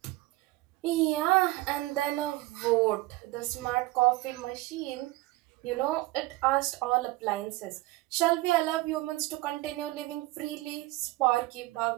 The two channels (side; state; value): left; quieter; 19.4 dB